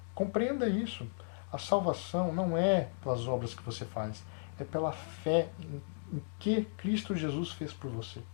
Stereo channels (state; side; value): silent; right; digital silence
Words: Compreenda isso. A salvação não é pelas obras que você faz, é pela fé em que Cristo Jesus fez por você.